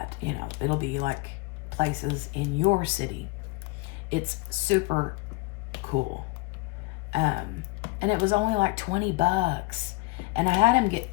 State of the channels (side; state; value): right; quieter; 23.4 dB